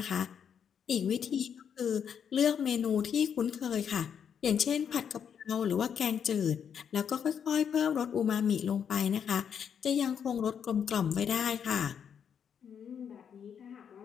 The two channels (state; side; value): quieter; right; 7.8 dB